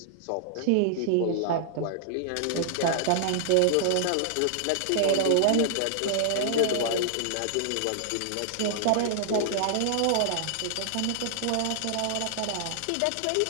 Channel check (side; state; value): both; different; correlation -0.01